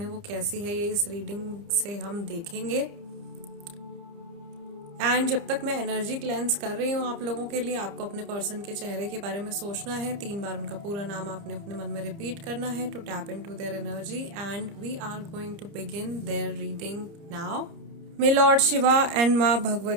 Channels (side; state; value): left; late; 30 ms